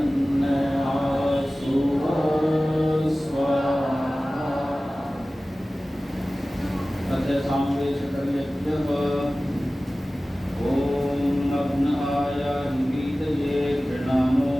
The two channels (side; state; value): both; normal; correlation 0.97